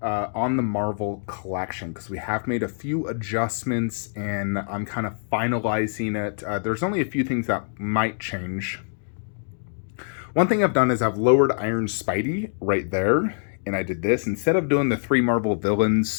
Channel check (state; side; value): silent; right; digital silence